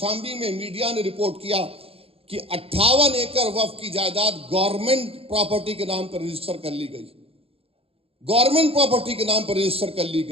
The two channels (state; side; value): late; left; 0.28 ms